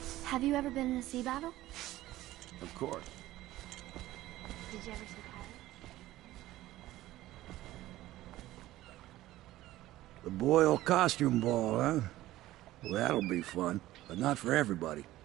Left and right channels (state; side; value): quieter; left; 15.8 dB